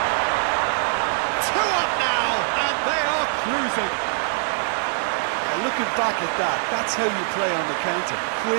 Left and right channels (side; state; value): left; silent; digital silence